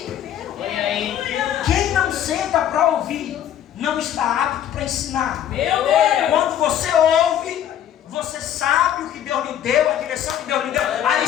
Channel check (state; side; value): quieter; right; 10.5 dB